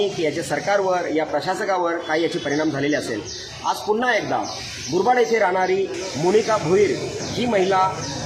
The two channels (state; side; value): identical; both; correlation 1.00